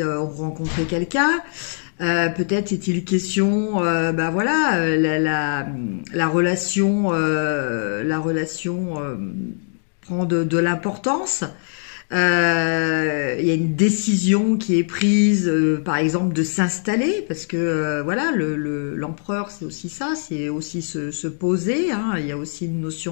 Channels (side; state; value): right; silent; 65 dB below the other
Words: ont rencontré quelqu'un, peut-être est-il question, bah voilà, la relation prend de l'importance. Il y a une décision qui est prise, par exemple, de s'installer, parce que voilà, l'empereur, c'est aussi ça, c'est aussi se poser, hein, il y a aussi une